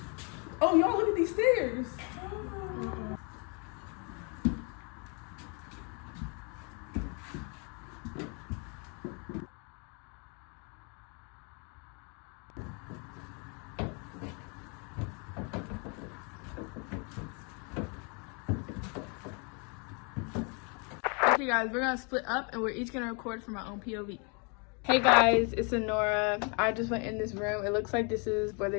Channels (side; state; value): right; quieter; 35.2 dB